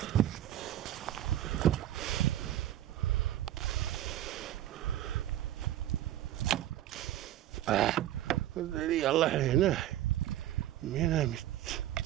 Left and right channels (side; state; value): left; quieter; 13.0 dB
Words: Liian lähellä näin. Minä mitään.